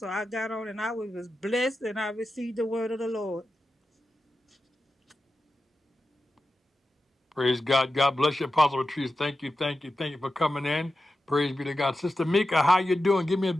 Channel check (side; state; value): both; normal; correlation 0.91